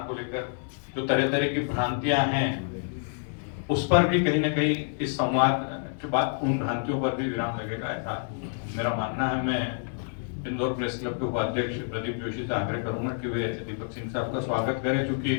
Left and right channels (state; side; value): silent; right; digital silence